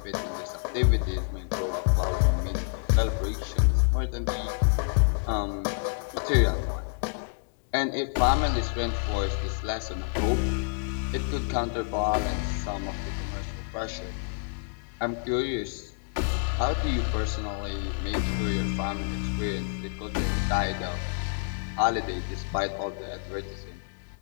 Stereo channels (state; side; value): silent; right; 59 dB below the other